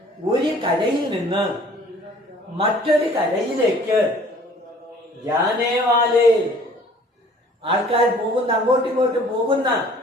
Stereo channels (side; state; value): both; normal; correlation 0.52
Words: ഒരു കരയിൽ നിന്ന് മറ്റൊരു കരയിലേക്ക്, ജാനേവാലെ ആൾക്കാർ പോകുന്ന, അങ്ങോട്ടും ഇങ്ങോട്ടും പോകുന്ന,